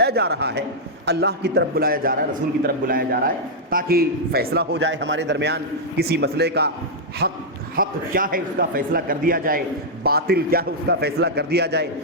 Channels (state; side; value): normal; both; correlation -0.05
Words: جا رہا ہے، اللہ کی طرف بلایا جا رہا ہے، رسول کی طرف بلایا جا رہا ہے، تاکہ فیصلہ ہو جائے ہمارے درمیان، کسی مسئلے کا حق کیا ہے اس کا فیصلہ کر دیا جائے، باطل کیا ہے اس کا فیصلہ کر دیا جائے،